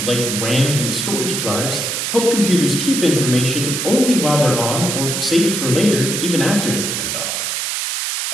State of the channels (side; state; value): right; noise; hiss, 2 dB below the sound